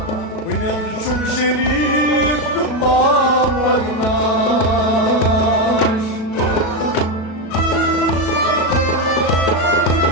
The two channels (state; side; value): late; right; 37 ms